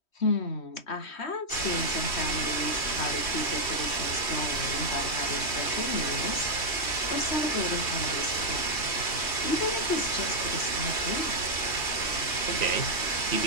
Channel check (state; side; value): late; right; 3.1 ms